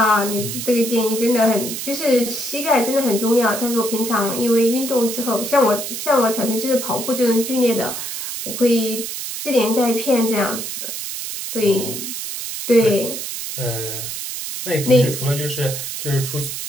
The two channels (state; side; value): noise; right; hiss, 6 dB below the sound